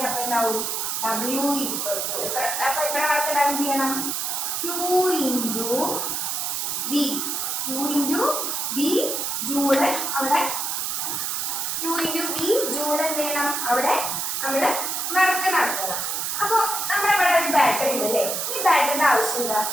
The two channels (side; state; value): right; noise; hiss, 1 dB below the sound